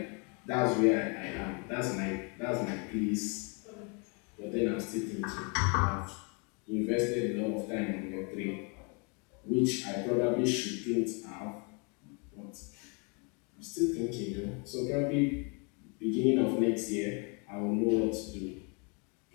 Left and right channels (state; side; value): quieter; right; 34.1 dB